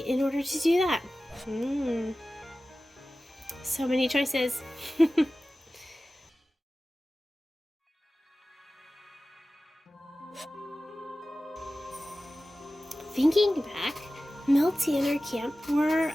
in order to do that? So many choices. Thinking back, Milty and her camp were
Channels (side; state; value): both; normal; correlation 0.96